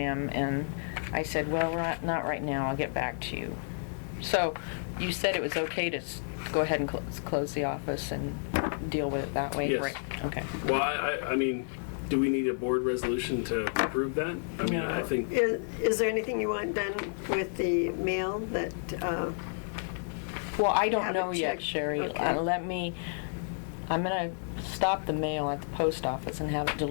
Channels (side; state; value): right; silent; 57 dB below the other